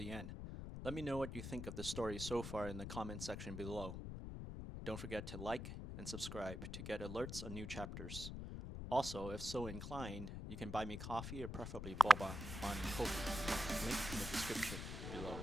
end. Let me know what you think of the story so far in the comment section below. Don't forget to like and subscribe to get alerts on new chapters. Also, if so inclined, you can buy me coffee or preferably boba on Ko-fi. Link in the description below.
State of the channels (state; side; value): noise; left; rumble, 6 dB below the sound